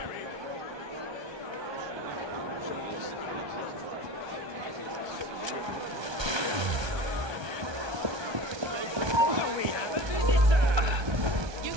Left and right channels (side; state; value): left; late; 1.2 ms